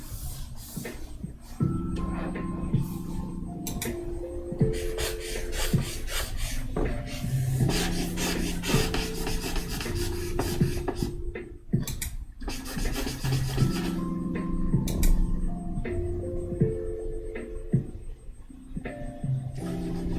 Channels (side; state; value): both; identical; correlation 1.00